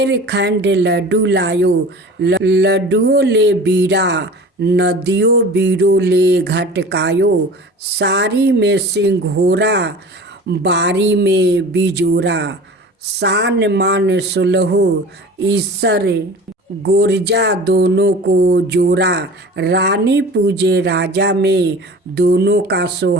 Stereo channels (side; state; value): both; normal; correlation 0.40